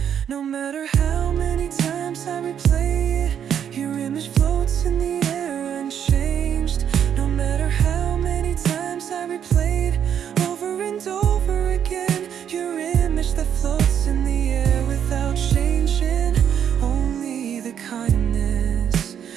No matter how many times I replay it, your image floats in the air unchanged. No matter how many times I replayed over and over again, your image that floats in the air without changing. Only the kindness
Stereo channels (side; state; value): left; quieter; 8.8 dB